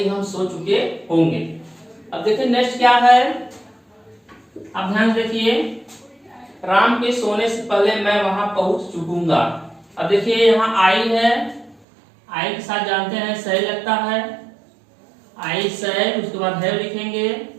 हम सो चुके होंगे। अब देखिए नेक्स्ट क्या है, अब ध्यान देखिए, राम के सोने से पहले मैं वहां पहुंच चुकूंगा। अब देखिए यहाँ आई है, आई के साथ जानते हैं सही लगता है, आई सही, उसके बाद है लिखेंगे,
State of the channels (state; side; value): drops out; left; at 11.8 s